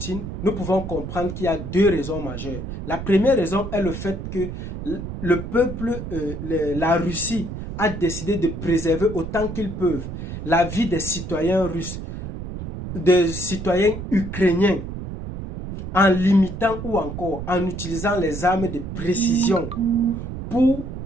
nous pouvons comprendre qu'il y a deux raisons majeures. La première raison est le fait que le peuple, la Russie, a décidé de préserver autant qu'ils peuvent la vie des citoyens russes, des citoyens ukrainiens, en limitant ou encore en utilisant les armes de précision pour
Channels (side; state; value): right; noise; rumble, 7 dB below the sound